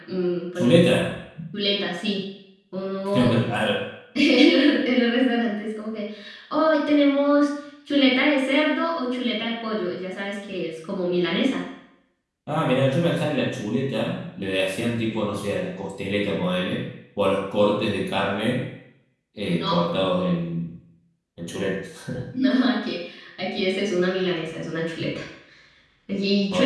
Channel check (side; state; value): both; identical; correlation 1.00